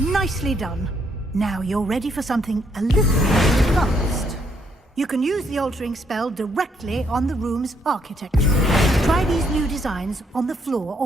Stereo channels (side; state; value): both; normal; correlation 0.71